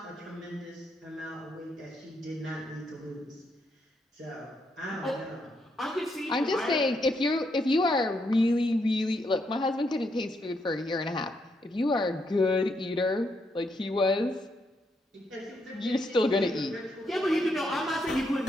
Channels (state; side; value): normal; both; correlation 0.78